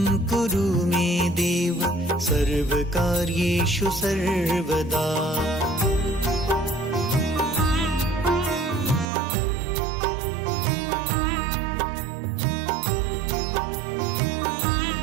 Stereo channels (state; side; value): drops out; left; at 9.1 s